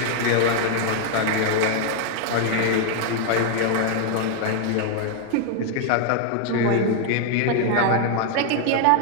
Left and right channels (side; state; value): both; different; correlation 0.00